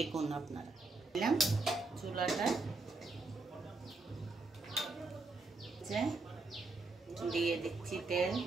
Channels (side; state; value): left; quieter; 3.4 dB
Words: আপনারা। চুলাটা দিয়ে দিচ্ছি তেল।